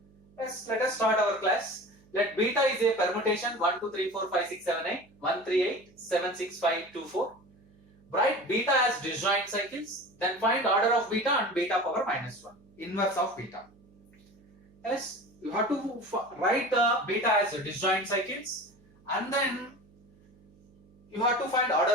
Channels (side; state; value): right; noise; hum, 29 dB below the sound